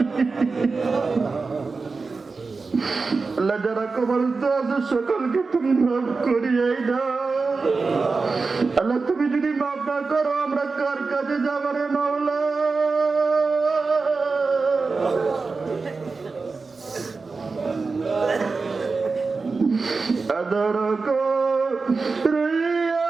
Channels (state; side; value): quieter; left; 4.2 dB